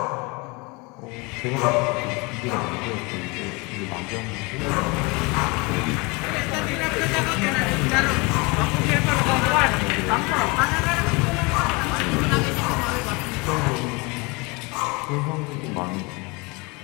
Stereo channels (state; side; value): quieter; right; 27.4 dB